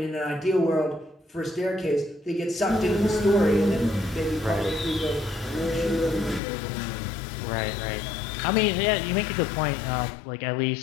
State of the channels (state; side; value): drops out; right; at 6.4 s